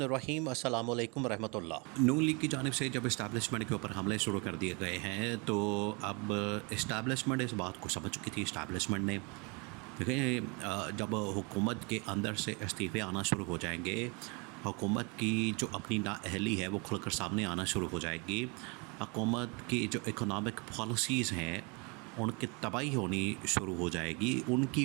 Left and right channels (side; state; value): left; quieter; 30.9 dB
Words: अस्सलामु अलैकुम रहमतुल्लाह। नून लीग की जानिब से जब इस्टेब्लिशमेंट के ऊपर हमले शुरू कर दिए गए हैं तो अब इस्टेब्लिशमेंट इस बात को समझ चुकी थी। इस्टेब्लिशमेंट ने देखें, जब हुकूमत के अंदर से इस्तीफ़े आना शुरू हो जाएंगे, हुकूमत की जो अपनी नाअहली है वो खुलकर सामने आना शुरू हो जाएगी। हुकूमत की जो इकोनॉमिक पॉलिसीज़ हैं उनकी तबाही होनी शुरू हो जाएगी